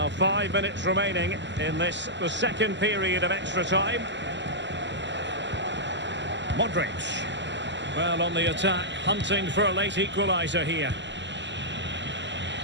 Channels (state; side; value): late; left; 0.53 ms